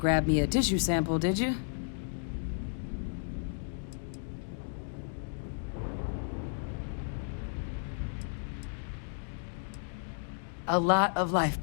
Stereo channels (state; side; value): silent; right; digital silence